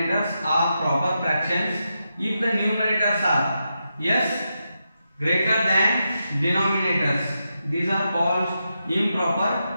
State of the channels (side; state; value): both; inverted; correlation -0.87